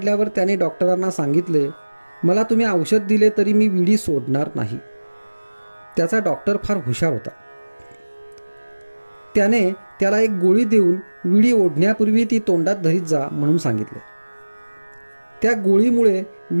त्याने डॉक्टरांना सांगितले, मला तुम्ही औषध दिले तरी मी विडी सोडणार नाही. त्याचा डॉक्टर फार हुशार होता. त्याने त्याला एक गोळी देऊन विडी ओढण्यापूर्वी ती तोंडात धरीत जा म्हणून सांगितले. त्या गोळीमुळे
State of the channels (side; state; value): both; inverted; correlation -1.00